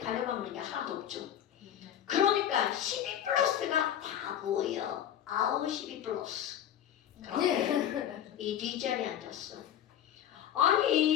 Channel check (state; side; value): quieter; right; 10.5 dB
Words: 게 하나도 없죠. 그러니까 12 플러스가 다 보여. 아우 12 플러스. 그런데 이 뒷자리에 앉았어.